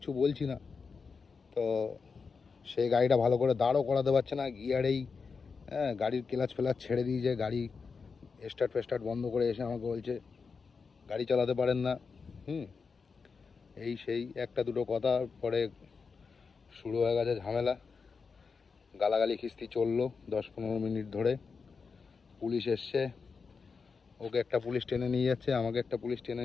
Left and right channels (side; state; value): right; quieter; 5.1 dB